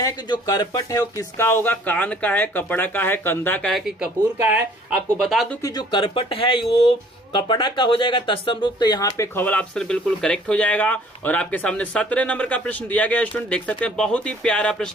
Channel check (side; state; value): both; normal; correlation 0.56